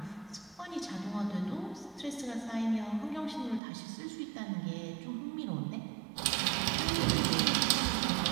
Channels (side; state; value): left; drops out; at 3.6 s